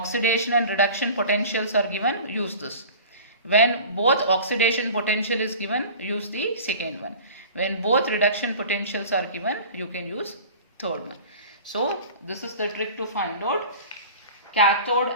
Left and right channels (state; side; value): inverted; both; correlation -0.40